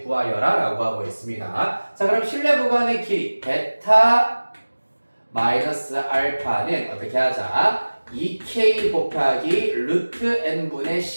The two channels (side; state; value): both; inverted; correlation -1.00